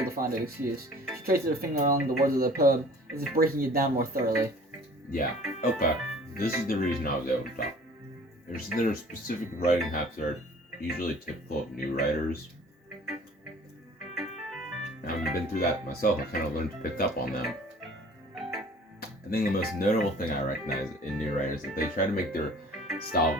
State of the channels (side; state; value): both; normal; correlation 0.49